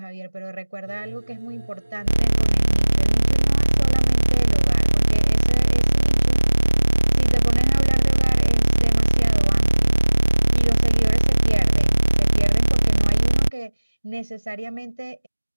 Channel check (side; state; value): both; inverted; correlation -1.00